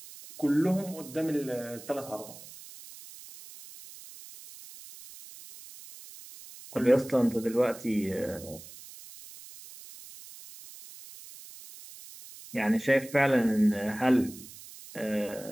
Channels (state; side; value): noise; right; hiss, 17 dB below the sound